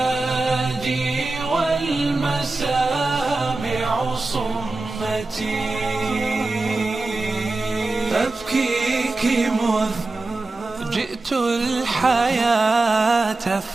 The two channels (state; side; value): quieter; left; 3.3 dB